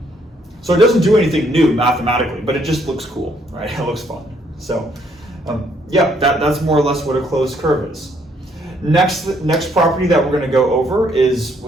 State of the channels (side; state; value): both; normal; correlation 0.68